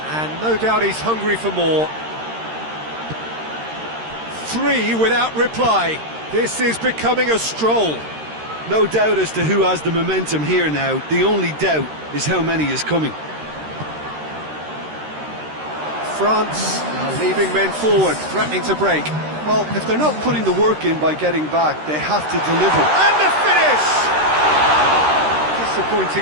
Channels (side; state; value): left; late; 13 ms